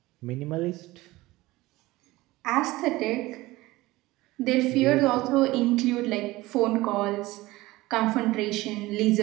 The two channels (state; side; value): quieter; left; 19.2 dB